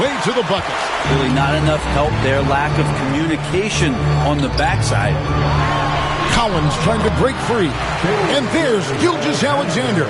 to the bucket. Really not enough help there. Lack of communication on the backside. Collins trying to break free. And there's Gilgeous-Alexander.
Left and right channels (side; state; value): both; identical; correlation 1.00